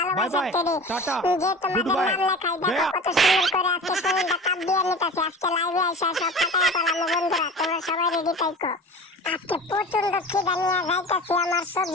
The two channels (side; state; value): both; normal; correlation 0.36